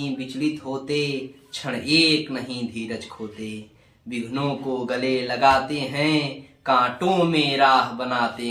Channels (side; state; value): both; identical; correlation 1.00